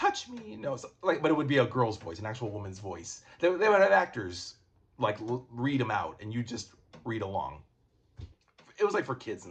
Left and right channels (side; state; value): both; identical; correlation 1.00